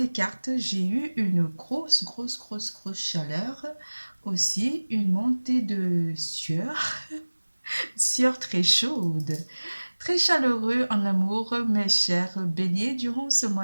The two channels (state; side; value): inverted; both; correlation -1.00